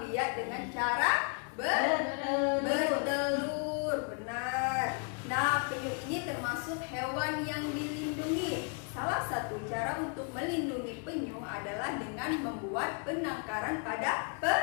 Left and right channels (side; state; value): right; quieter; 38.9 dB